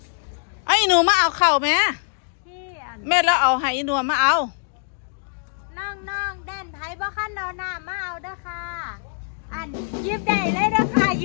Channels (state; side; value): silent; right; 63 dB below the other